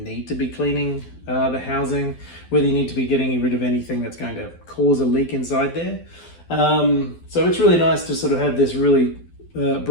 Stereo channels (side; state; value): right; late; 12 ms